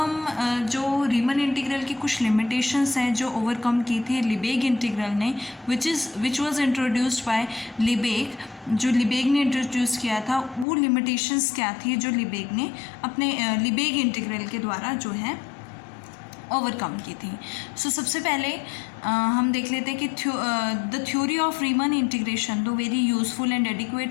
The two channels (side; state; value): right; drops out; at 10.7 s